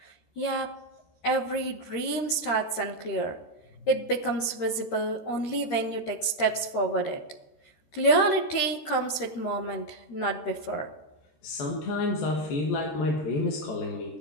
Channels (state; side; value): late; right; 13 ms